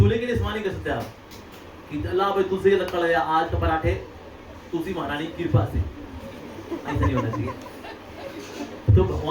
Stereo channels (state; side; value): identical; both; correlation 1.00